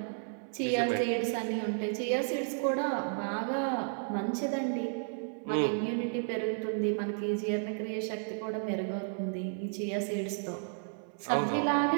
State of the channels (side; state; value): left; silent; 56 dB below the other